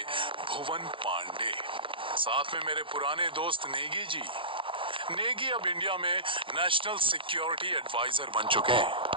भुवन पांडे, साथ में मेरे पुराने दोस्त नेगी जी। नेगी अब इंडिया में नेशनल सिक्योरिटी एडवाइजर बन चुके हैं।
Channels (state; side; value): late; left; 0.25 ms